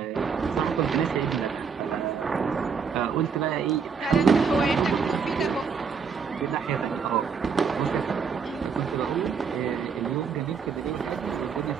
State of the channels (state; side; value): quieter; left; 6.0 dB